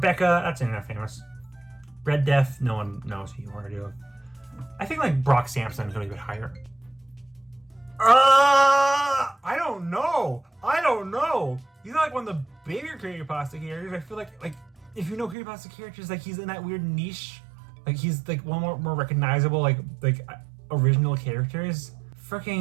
that's internet famous. Red Death, no one knows who you are, do. I think like Brock Sampson is going to be a bit higher. I don't know. He's not like one of the bigger creepypasta characters. I feel like if you know creepypasta characters, like he's in that weird niche. Like he's like one more recognizable like original characters.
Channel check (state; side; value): drops out; left; at 15.4 s